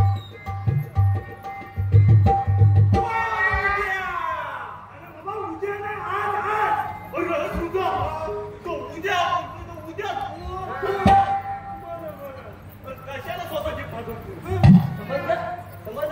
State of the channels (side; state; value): both; identical; correlation 1.00